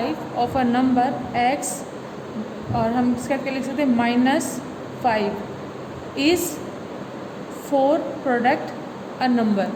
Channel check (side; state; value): both; identical; correlation 1.00